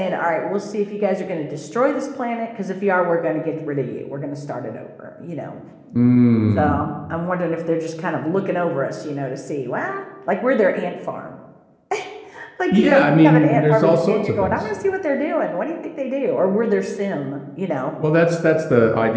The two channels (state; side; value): identical; both; correlation 1.00